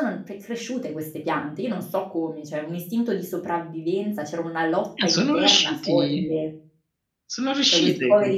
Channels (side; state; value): both; identical; correlation 1.00